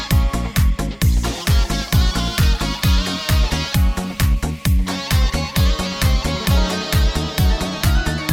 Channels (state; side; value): identical; both; correlation 1.00